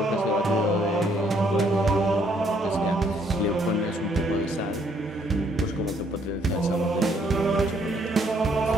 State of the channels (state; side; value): normal; both; correlation 0.67